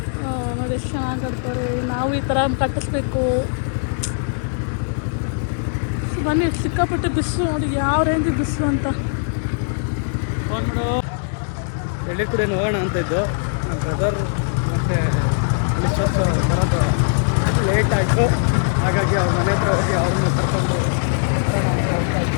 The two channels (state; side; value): silent; right; digital silence